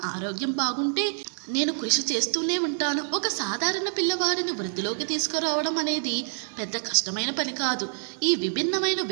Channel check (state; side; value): silent; left; 60 dB below the other